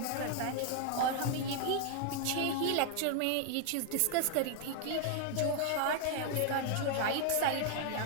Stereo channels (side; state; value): both; different; correlation 0.00